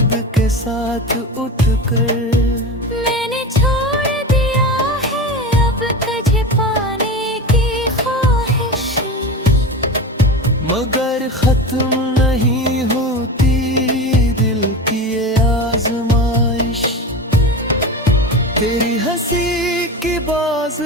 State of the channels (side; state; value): both; normal; correlation 0.27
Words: के साथ उठकर। मैंने छोड़ दिया है अब तुझे पाने की ख्वाहिश, मगर खत्म नहीं होती दिल की ये आजमाइश। तेरी हंसी की बाज